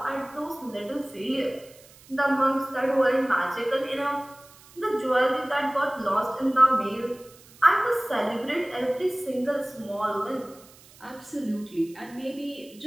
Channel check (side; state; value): right; noise; hiss, 24 dB below the sound